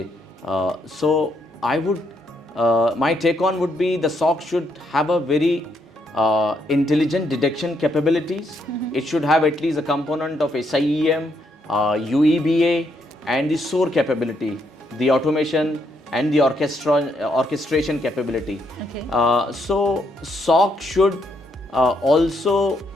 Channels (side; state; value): both; normal; correlation 0.75